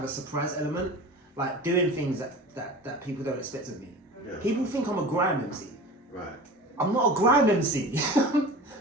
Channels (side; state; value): both; normal; correlation 0.36